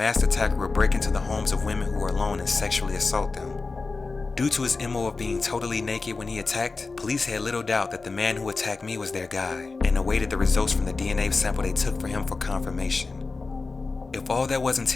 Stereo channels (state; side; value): quieter; right; 4.0 dB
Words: attacker would break into the homes of women who were alone and sexually assault them. Due to his MO of being totally naked when he attacked, police had little doubt that the man who attacked me was their guy, and awaited the results from the DNA sample they took for him for confirmation. If all that wasn't